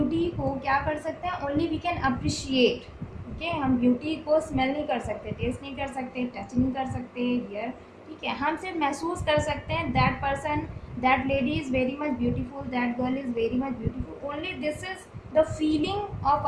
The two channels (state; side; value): identical; both; correlation 1.00